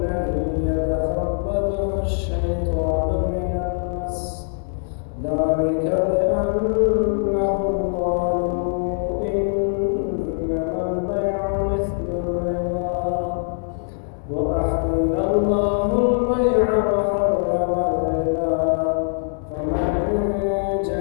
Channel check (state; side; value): silent; right; digital silence